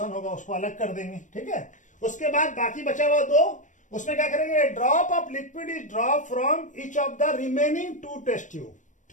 होगा, उसको अलग कर देंगे, ठीक है। उसके बाद बाकी बचा हुआ 2, उसमें क्या करेंगे, drop of liquid is drop from each of the remaining 2 test tube,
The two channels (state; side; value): late; right; 0.36 ms